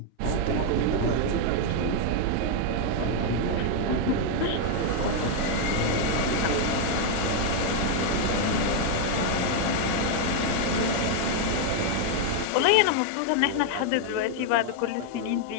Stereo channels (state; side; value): different; both; correlation 0.00